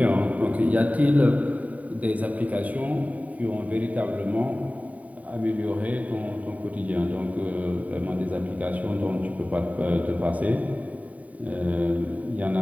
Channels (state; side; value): late; left; 0.070 ms